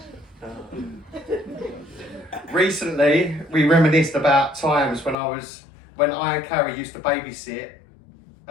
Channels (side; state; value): right; drops out; at 5.2 s